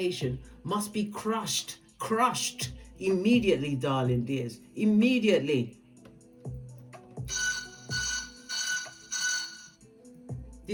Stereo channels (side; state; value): both; identical; correlation 1.00